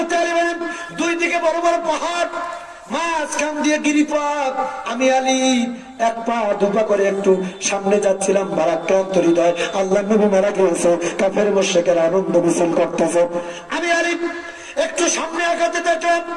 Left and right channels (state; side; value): identical; both; correlation 1.00